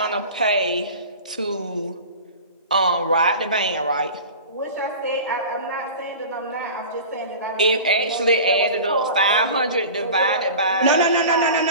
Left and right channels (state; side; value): inverted; both; correlation -0.37